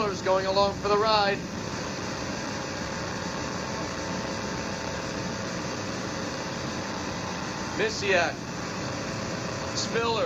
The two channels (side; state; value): both; identical; correlation 1.00